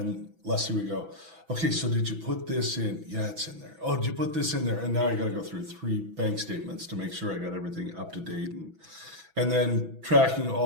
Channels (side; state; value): left; late; 6.1 ms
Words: Leslie would go, okay, so did you put this in? Yeah, it's in there. Oh, did you put this in there? And now I got to go through 3 bank statements to make sure I got everything up to date. And then tracking